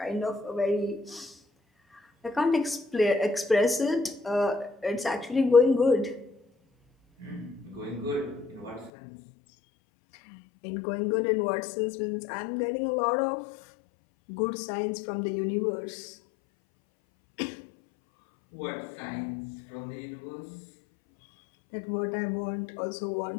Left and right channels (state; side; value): drops out; right; at 8.9 s